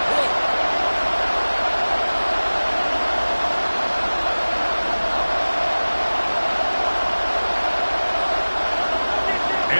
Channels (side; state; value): both; inverted; correlation -1.00